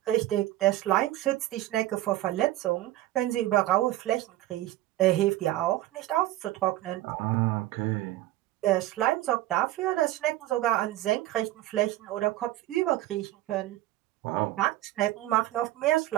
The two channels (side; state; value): left; quieter; 15.6 dB